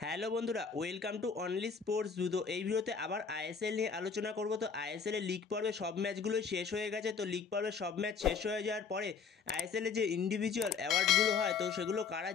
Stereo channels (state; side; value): quieter; right; 5.8 dB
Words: হ্যালো বন্ধুরা, ওয়েলকাম টু অনলি স্পোর্টস জুতো। এই ভিডিওতে আবার আইএসএল নিয়ে আলোচনা করব। তো আইএসএল এর লিগ পর্বে সব ম্যাচগুলোই শেষ হয়ে গেছে। তো লিগ পর্বে সব ম্যাচ শেষ হয়ে যাওয়ার পরে আইএসএল এর যে ইন্ডিভিজুয়াল অ্যাওয়ার্ডগুলো হয়, তো সেগুলো কারা